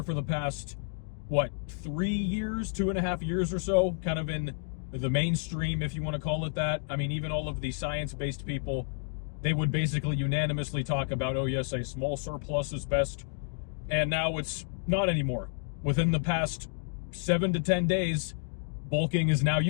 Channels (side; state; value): right; silent; digital silence